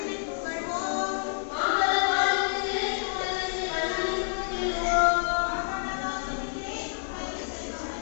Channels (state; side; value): silent; right; digital silence